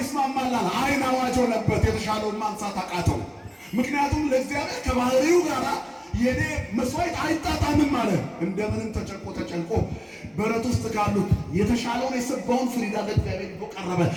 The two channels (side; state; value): both; identical; correlation 1.00